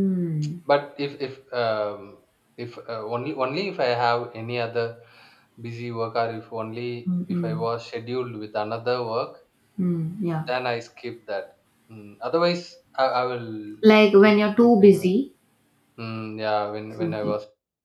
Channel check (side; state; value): both; identical; correlation 1.00